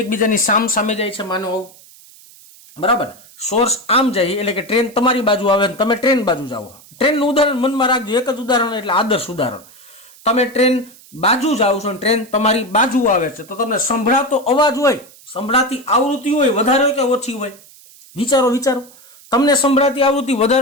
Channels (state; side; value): noise; right; hiss, 24 dB below the sound